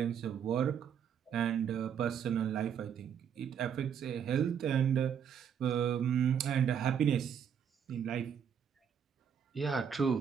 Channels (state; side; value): quieter; left; 8.0 dB